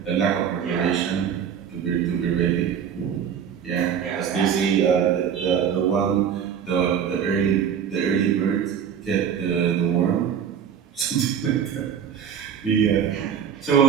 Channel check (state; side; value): quieter; left; 8.1 dB